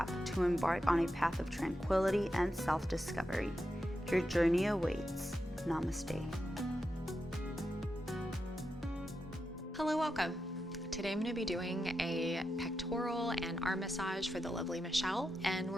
to embark on a path of tranquility and self-discovery. Your journey awaits. Namaste. Hello, welcome. Today I'm going to be doing a pectoral and arm massage for the lovely Michelle, and we're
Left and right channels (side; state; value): both; normal; correlation 0.87